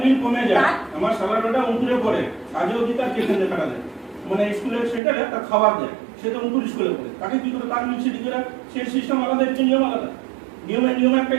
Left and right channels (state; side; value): drops out; left; at 5.0 s